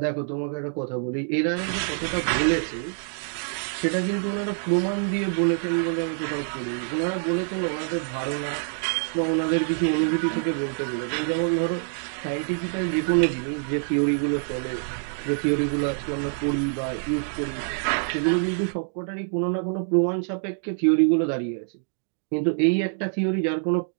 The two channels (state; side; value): silent; left; 61 dB below the other